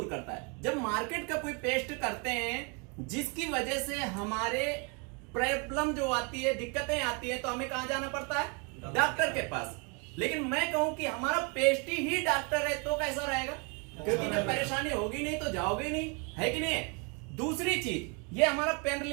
करता है। जब मार्केट का कोई पेस्ट करते हैं जिसकी वजह से हमारे प्रॉब्लम जो आती है, दिक्कतें आती है, तो हमें कहां जाना पड़ता है? डॉक्टर के पास। लेकिन मैं कहूं कि हमारा पेस्ट ही डॉक्टर है तो कैसा रहेगा? क्योंकि जब परेशानी होगी नहीं तो जाओगे नहीं, है कि नहीं? दूसरी चीज, ये हमारा पेन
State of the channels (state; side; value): quieter; left; 33.5 dB